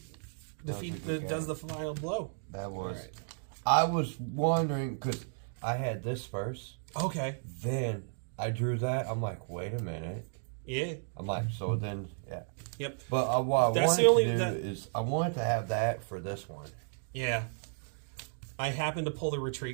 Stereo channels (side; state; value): left; silent; digital silence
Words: a good does game. the final blow. That was... Alright. I was wondering, because I had this first. Okay. Then I drew that. I'm like, wait a minute. Yeah. I'm like, so then, yeah. Yep. But what I That's wanted the only- to do that- is I wanted to have that for this one. Yeah. I happened to pull the